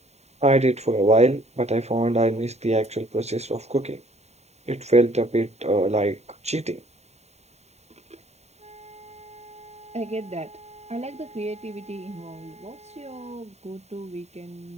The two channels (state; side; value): late; left; 0.32 ms